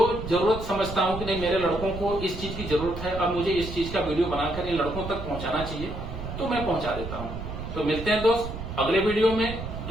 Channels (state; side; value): noise; right; rumble, 8 dB below the sound